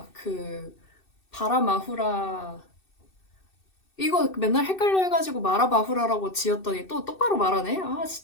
그 바라마후라 이거 맨날 헷갈려 해가지고 마라바후라라고 지었더니 또 똑바로 말하네? 아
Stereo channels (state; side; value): late; right; 2.6 ms